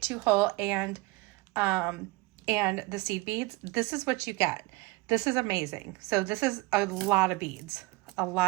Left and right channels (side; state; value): left; quieter; 23.3 dB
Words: 2-hole and the seed beads, this is what you get. This is amazing. So this is a lot of beads, a